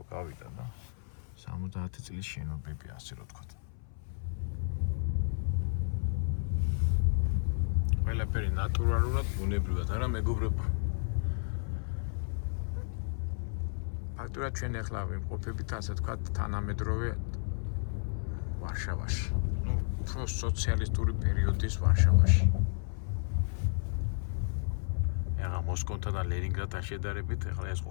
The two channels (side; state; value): right; silent; 56 dB below the other